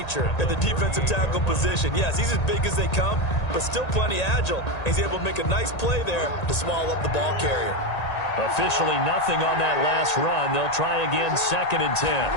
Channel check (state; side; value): late; right; 1.9 ms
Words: at the defensive tackle position. Yes, he's as big as they come, but still plenty agile. He's able to make a nice play there to swallow up the ball carrier. Officially nothing on that last run. They'll try again, 2nd and 10.